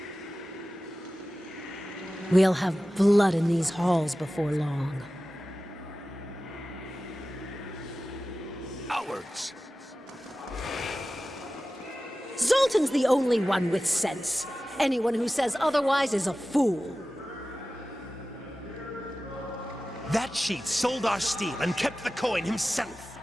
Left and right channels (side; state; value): both; normal; correlation 0.95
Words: We'll have blood in these halls before long. Cowards! Zoltan's the only one with sense. Anyone who says otherwise is a fool. That cheat sold our steel and kept the coin himself.